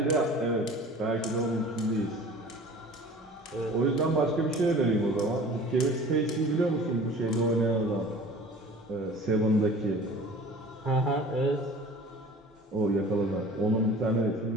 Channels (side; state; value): both; normal; correlation 0.44